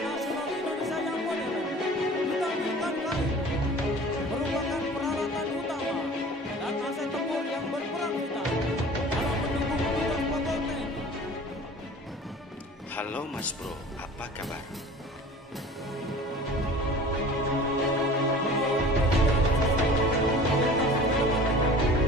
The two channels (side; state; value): both; normal; correlation 0.42